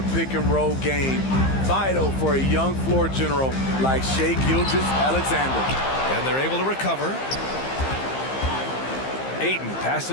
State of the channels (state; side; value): late; right; 15 ms